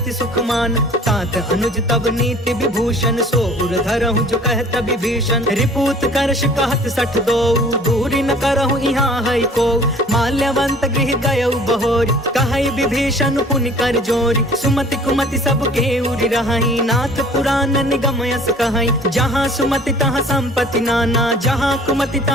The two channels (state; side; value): normal; both; correlation 0.50